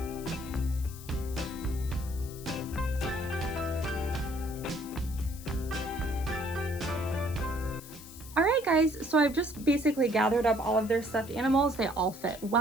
All right, guys, so I've just basically gathered up all of their stuffed animals. They all fit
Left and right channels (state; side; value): noise; left; hiss, 17 dB below the sound